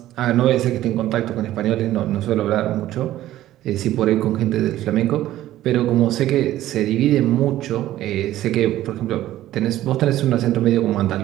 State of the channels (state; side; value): quieter; left; 14.1 dB